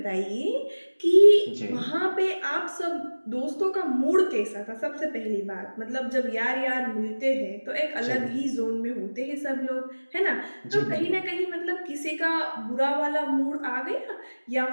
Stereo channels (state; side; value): inverted; both; correlation -1.00